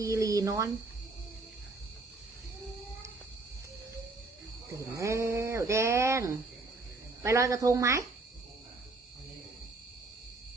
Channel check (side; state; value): left; quieter; 3.4 dB